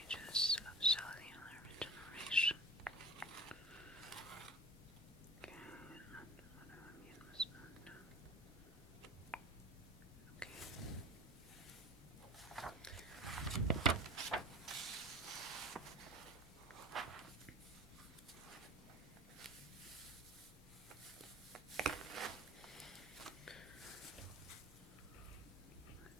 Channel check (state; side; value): normal; both; correlation 0.38